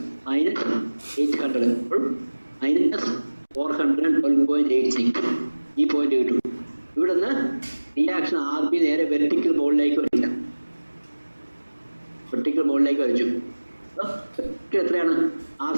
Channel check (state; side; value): inverted; both; correlation -1.00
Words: minus 800 minus 412.86. ഈ പോയിന്റ് കിട്ടും. ഇവിടെ നിന്ന് റിയാക്ഷൻ RB നേരെ വെർട്ടിക്കൽ മോളിലേക്ക് വരില്ല. വെർട്ടിക്കൽ മോളിലേക്ക് വരച്ചു. എത്രയാണ്